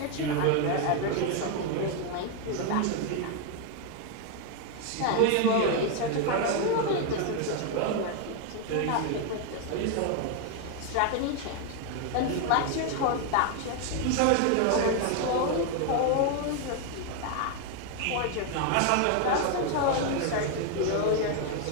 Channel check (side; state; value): both; different; correlation 0.01